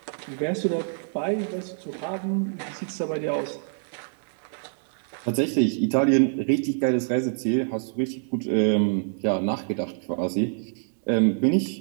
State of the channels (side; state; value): left; silent; digital silence